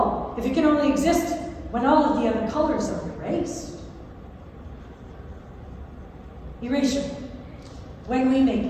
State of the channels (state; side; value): identical; both; correlation 1.00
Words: if it can only exist when all of the other colors are erased. Erasure, when we make